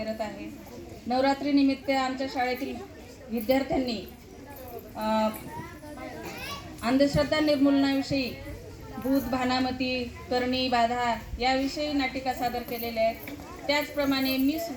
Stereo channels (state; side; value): identical; both; correlation 1.00